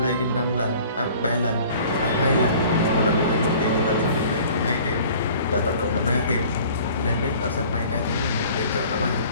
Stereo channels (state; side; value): inverted; both; correlation -0.49